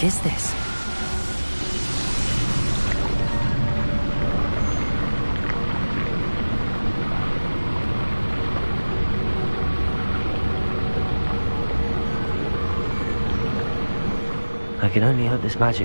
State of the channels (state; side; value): inverted; both; correlation -1.00